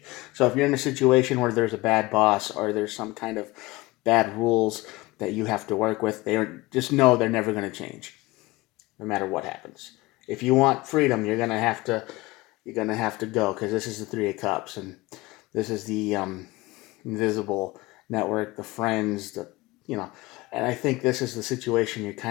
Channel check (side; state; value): right; quieter; 21.0 dB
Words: So if you're in a situation where there's a bad boss or there's some kind of bad rules that you have to work with, just know they're never going to change, no matter what happens. If you want freedom, you're going to have to go, because this is the Three of Cups, and this is the invisible network, the friends, and I think this is the situation you're